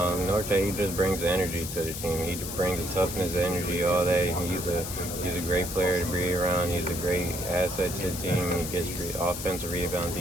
he just brings the energy to the team. He brings the toughness, the energy, all that. He's a great player to be around. He's a great asset to the team. He gets offensive rebounds,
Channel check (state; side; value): noise; left; hiss, 7 dB below the sound